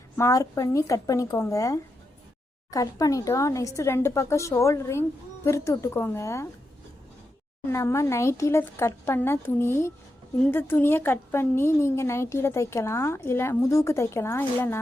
மார்க் பண்ணி கட் பண்ணிக்கோங்க. கட் பண்ணிட்டோம். நெக்ஸ்ட்டு 2 பக்கம் ஷோல்டரையும் பிரித்து விட்டுக்கோங்க. நம்ம நைட்டியில் கட் பண்ண துணி, இந்த துணியை கட் பண்ணி நீங்கள் நைட்டியில் தைக்கலாம், இல்லை முதுகுக்கு தைக்கலாம்.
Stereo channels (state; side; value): normal; both; correlation 0.86